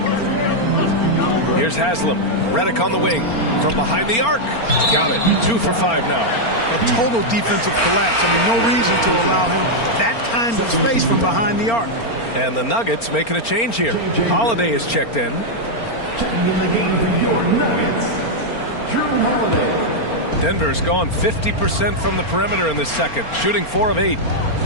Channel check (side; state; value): right; late; 4.4 ms